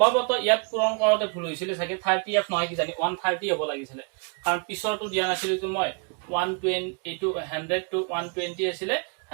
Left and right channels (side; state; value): left; quieter; 35.2 dB